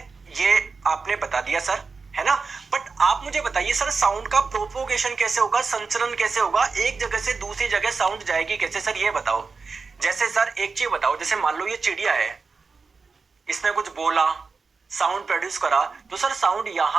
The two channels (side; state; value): left; quieter; 4.6 dB